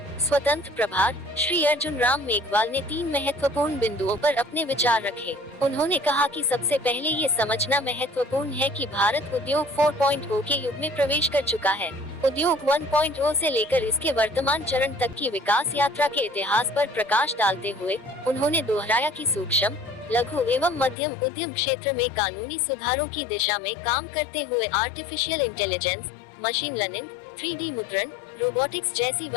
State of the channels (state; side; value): drops out; right; at 21.0 s